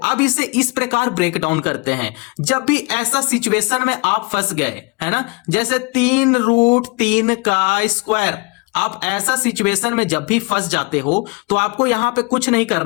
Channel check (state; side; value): quieter; right; 27.9 dB